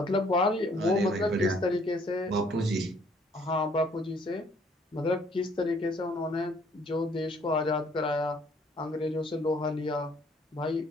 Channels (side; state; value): both; normal; correlation 0.62